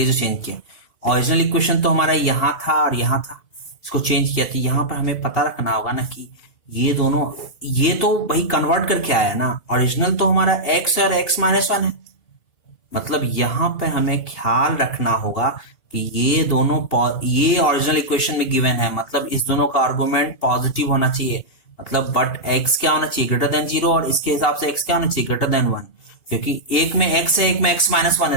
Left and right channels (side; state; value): right; late; 2.8 ms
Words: जो चेंज किया, ओरिजिनल इक्वेशन तो हमारा यहाँ था और यहाँ था, इसको चेंज किया, तो यहाँ पर हमें पता रखना होगा ना कि ये दोनों, ये तो भाई कन्वर्ट करके आया ना, ओरिजिनल तो हमारा x और x-1 है, मतलब यहां पे हमें ख्याल रखना होगा कि ये दोनों ये ओरिजिनल इक्वेशन में गिवन है, मतलब इस दोनों का आर्गुमेंट पॉजिटिव होना चाहिए, मतलब बट x क्या होना चाहिए, ग्रेटर देन 0, और इसके हिसाब से x क्या होना चाहिए, ग्रेटर देन 1, क्योंकि एक में x है एक में x-1